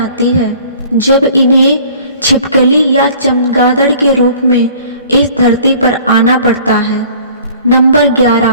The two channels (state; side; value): inverted; both; correlation -0.50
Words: है जब इन्हें छिपकली या चमगादड़ के रूप में इस धरती पर आना पड़ता है। नंबर